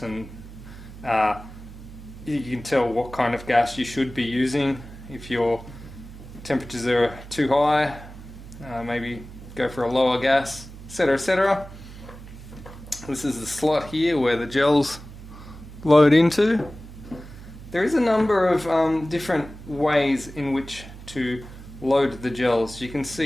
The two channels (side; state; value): right; noise; hum, 15 dB below the sound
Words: and you can tell what kind of gas you should be using. If your temperatures are too high, maybe go for a lower gas, etc, etc. This is the slot here where the gels load into. There is a number of different ways in which to load the gels. You can